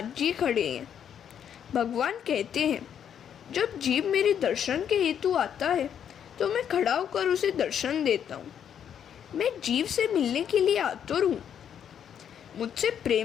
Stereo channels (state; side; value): quieter; right; 8.8 dB